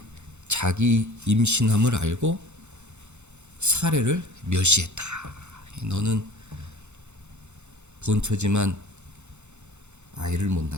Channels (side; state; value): left; late; 0.83 ms